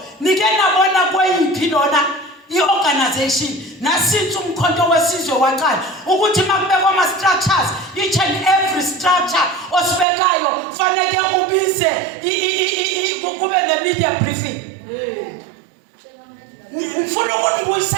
nike nabona kweyiphi lona i-organization nasince umkhonto wesizwe waqala ukuthi makubekwa ama structures, each and every structure osibekayo fanele ubize kube ne-media briefing. Ngifuna ukunibuyisa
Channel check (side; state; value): left; drops out; at 10.1 s